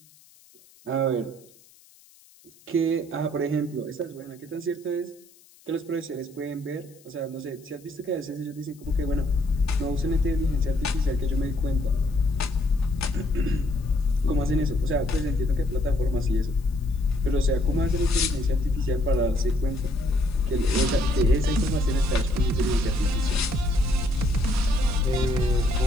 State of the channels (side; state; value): left; noise; hiss, 28 dB below the sound